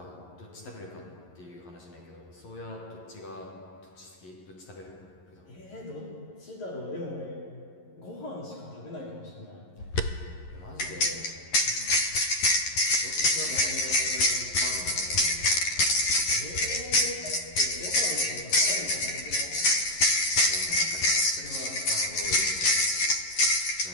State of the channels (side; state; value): right; late; 11 ms